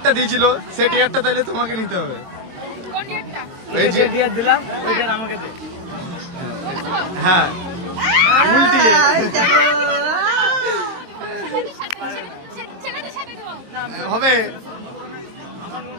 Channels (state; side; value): late; left; 23 ms